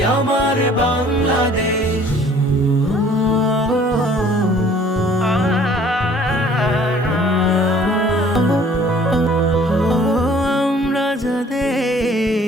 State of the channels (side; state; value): both; normal; correlation 0.54